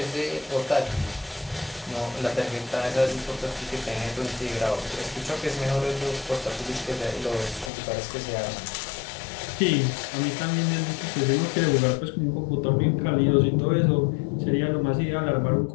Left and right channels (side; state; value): right; drops out; at 7.7 s